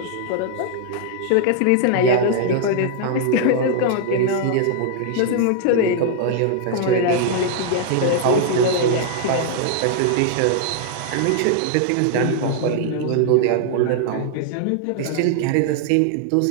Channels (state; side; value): different; both; correlation 0.00